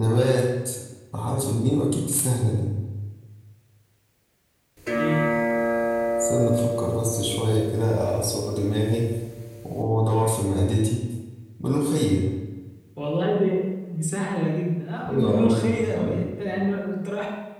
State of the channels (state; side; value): identical; both; correlation 1.00